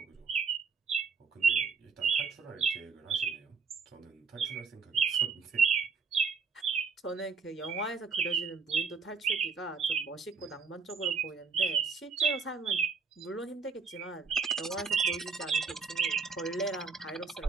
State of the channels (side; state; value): left; quieter; 5.2 dB